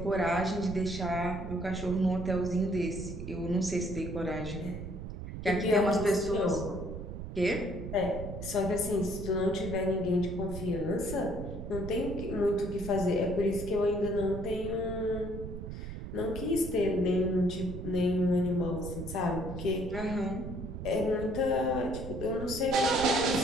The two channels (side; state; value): right; noise; rumble, 8 dB below the sound